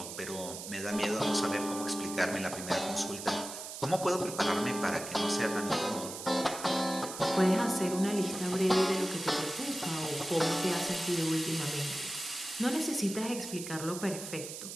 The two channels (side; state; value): right; noise; hiss, 9 dB below the sound